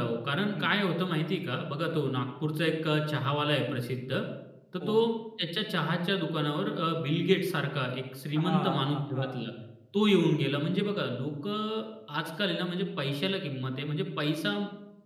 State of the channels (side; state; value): both; identical; correlation 1.00